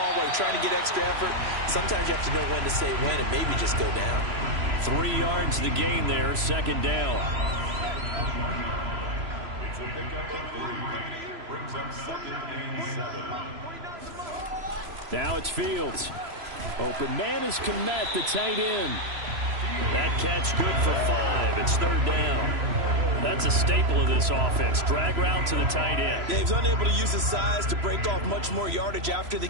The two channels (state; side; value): late; left; 3.0 ms